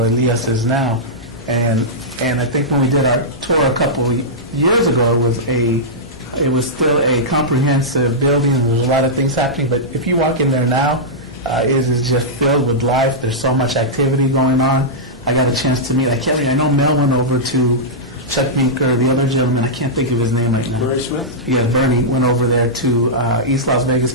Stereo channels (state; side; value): normal; both; correlation -0.11